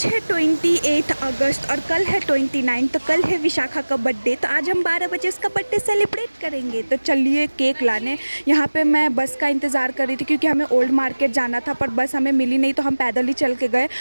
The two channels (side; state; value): both; inverted; correlation -1.00